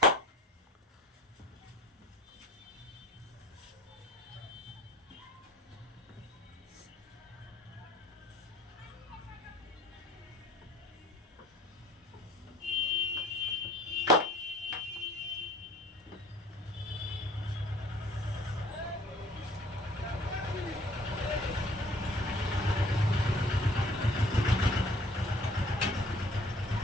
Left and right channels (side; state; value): both; normal; correlation 0.52